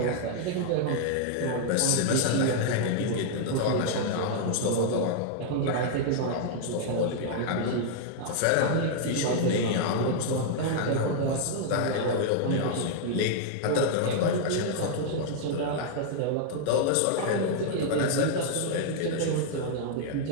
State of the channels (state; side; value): different; both; correlation -0.01